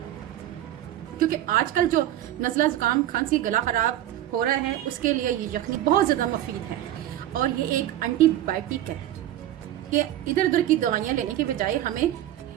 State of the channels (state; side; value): quieter; left; 12.8 dB